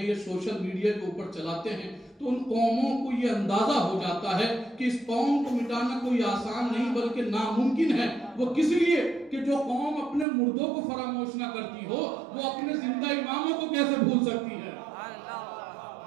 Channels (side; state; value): left; drops out; at 10.2 s